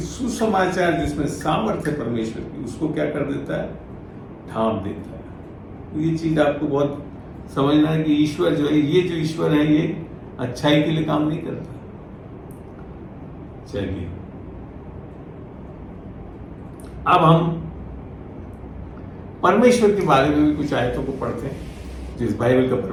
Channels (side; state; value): both; identical; correlation 1.00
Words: जिसमें सामर्थ्य परमेश्वर की, उसको क्या कर देता है? ढांप देता है। ये चीज आपको बहुत समझना है कि ईश्वर जो है, ये जो ईश्वर है, ये अच्छाई के लिए काम नहीं करता। चलिए अब हम परमेश्वर के बारे में भी कुछ आयतों को पढ़ते हैं जो इस बाइबल का